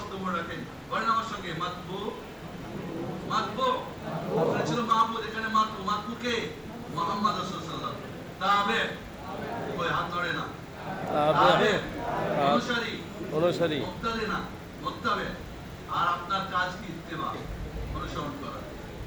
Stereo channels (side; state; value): both; identical; correlation 1.00